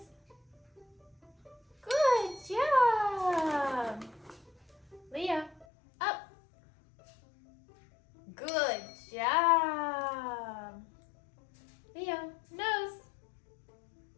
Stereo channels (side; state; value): right; drops out; at 5.7 s